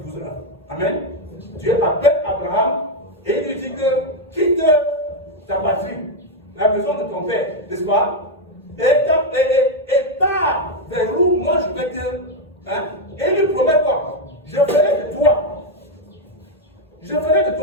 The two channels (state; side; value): normal; both; correlation 0.03